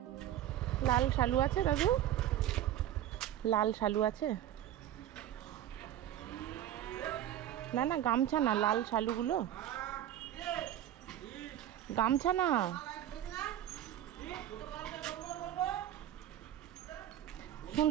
লাল শালু আছে দাদু? লাল শালু আছে? না না গামছা না, লাল শালুগুলো গামছা না।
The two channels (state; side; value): quieter; left; 11.9 dB